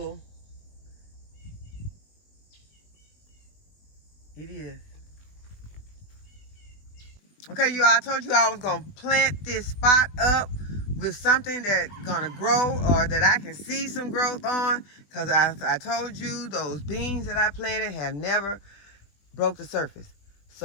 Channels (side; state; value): right; late; 20 ms